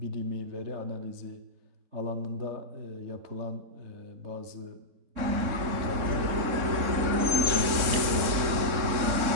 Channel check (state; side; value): late; left; 3.7 ms